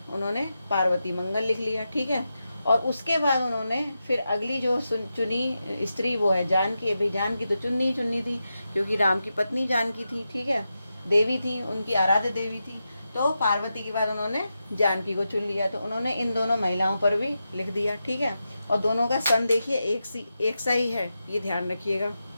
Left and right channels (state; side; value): inverted; both; correlation -0.89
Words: उन्होंने पार्वती मंगल लिख लिया, ठीक है। और उसके बाद उन्होंने फिर अगली जो चुनी स्त्री वो है जानकी। अभी जानकी तो चुननी थी, क्योंकि राम की पत्नी जानकी थी, ठीक है, देवी थी, उनकी आराध्य देवी थी। तो पार्वती के बाद उन्होंने जानकी को चुन लिया, तो उन्होंने इन दोनों महिलाओं पर भी लिख दिया, ठीक है। और दोनों का सन देखिए एक सा ही है, ये ध्यान रखिएगा।